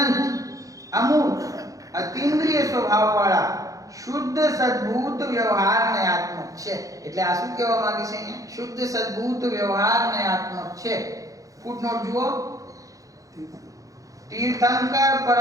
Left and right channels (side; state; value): left; late; 0.16 ms